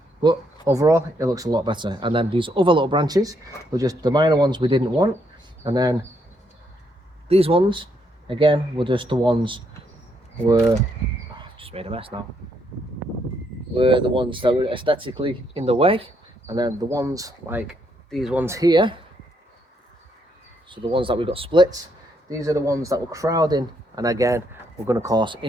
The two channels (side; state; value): both; normal; correlation 0.74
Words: but overall it looks a lot better. And then these other little branches were just the minor ones we didn't want, and then these ones again were just the ones just made a mess now, were the ones that were aesthetically in the way. And then the ones like these ones here, so the ones that we got split, these are the ones that were crowding, and again we're going to cause